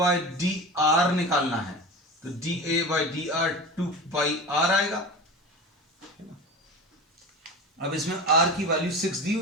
d r निकालना है, तो d a by d r 2 pi r आएगा। अब इसमें आर की वैल्यू 6 दी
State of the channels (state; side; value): normal; both; correlation 0.30